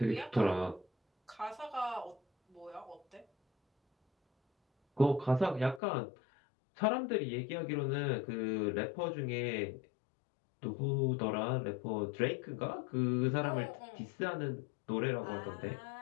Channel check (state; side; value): drops out; right; at 5.8 s